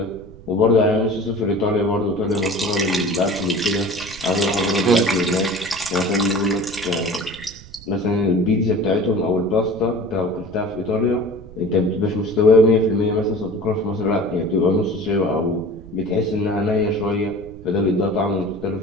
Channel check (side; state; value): right; noise; rumble, 19 dB below the sound